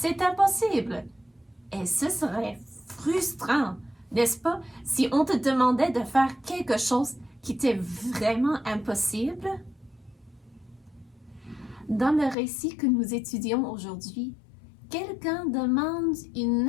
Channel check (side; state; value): right; drops out; at 12.4 s